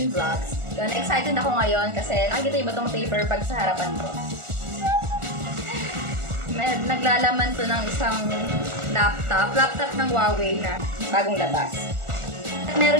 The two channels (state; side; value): late; left; 1.4 ms